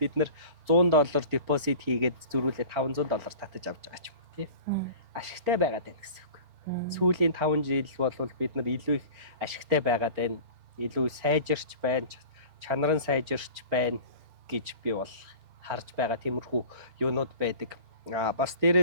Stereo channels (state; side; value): late; left; 4.4 ms